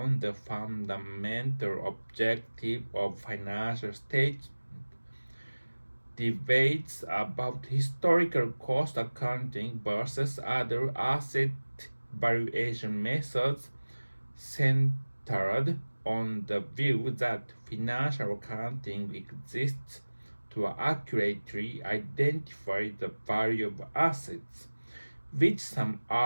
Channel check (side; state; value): both; inverted; correlation -1.00